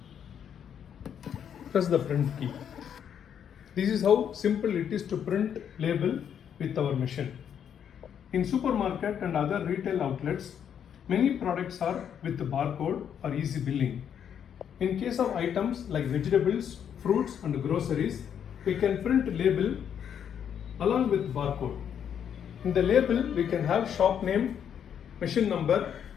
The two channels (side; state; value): right; quieter; 8.6 dB